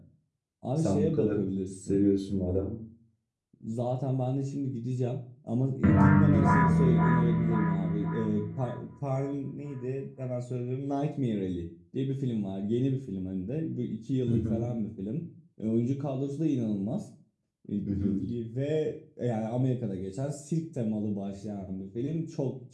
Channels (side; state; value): both; identical; correlation 1.00